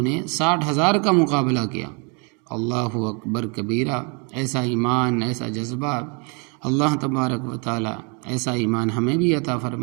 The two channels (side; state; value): left; quieter; 34.0 dB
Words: نے 60,000 کا مقابلہ کیا۔ اللہ اکبر کبیرہ، ایسا ایمان، ایسا جذبہ، اللہ تبارک و تعالی ایسا ایمان ہمیں بھی عطا